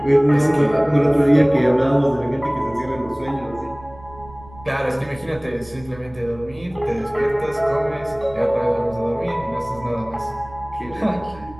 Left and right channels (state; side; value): noise; right; rumble, 21 dB below the sound